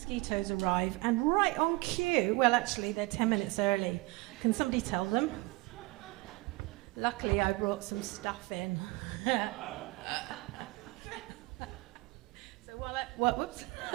arrive, and right on cue. Well, actually, they're 10 minutes early. Can somebody tell them? Luckily, I brought some stuff in. So whoops.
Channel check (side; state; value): left; quieter; 23.0 dB